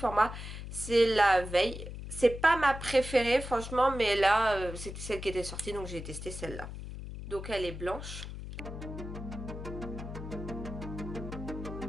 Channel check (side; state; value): left; noise; hum, 9 dB below the sound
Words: c'est la Veille. C'est pas ma préférée franchement, mais là c'était celle qui était sortie, donc j'ai testé celle-là. Donc elle est blanche.